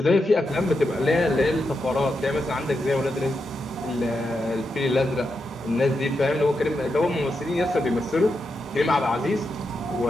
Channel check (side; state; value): both; normal; correlation 0.86